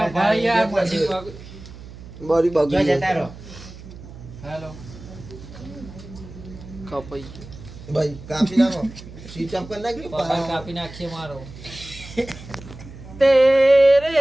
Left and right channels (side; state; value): right; noise; hum, 16 dB below the sound